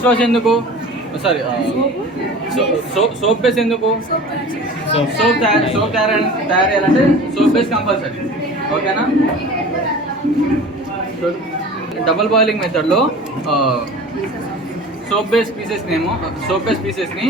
వాష్ ఎందుకు? సారీ, సోప్ బేస్ ఎందుకు? సోప్ తయారు సోప్ బేస్ కంపల్సరీ. ఓకేనా? డబుల్ బాయిలింగ్ మెథడ్లో సోప్ బేస్ పీసెస్ని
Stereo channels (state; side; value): normal; both; correlation 0.39